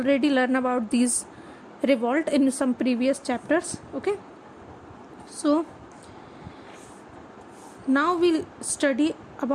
learned about these revolt in some previous chapters. Okay, so now we'll study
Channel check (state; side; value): identical; both; correlation 1.00